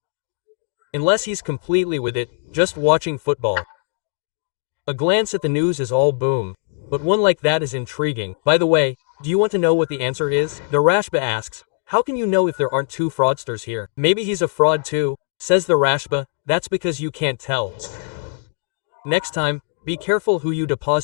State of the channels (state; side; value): silent; right; 65 dB below the other